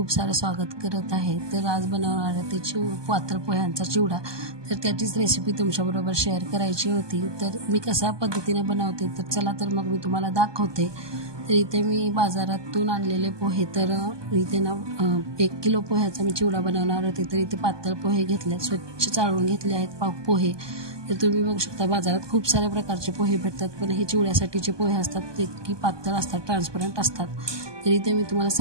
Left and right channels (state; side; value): late; left; 1.2 ms